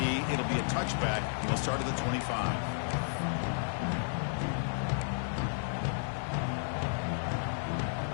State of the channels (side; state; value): right; silent; 56 dB below the other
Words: It'll be a touchback. He'll start at the 25.